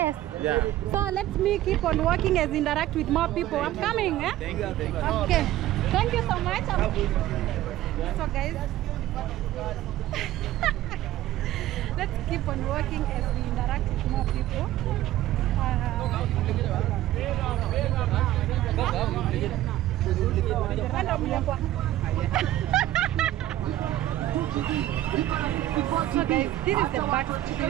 Yeah. So let me keep on working as interact with more people. I'm coming, eh? Thank you. Thank you. Okay. Thank you so much. So guys, let's keep on working as we interact with more people. So guys, this is the back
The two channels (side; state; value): left; quieter; 14.2 dB